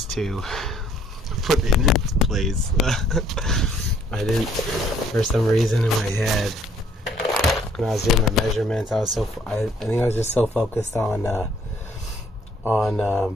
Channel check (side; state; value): both; normal; correlation 0.63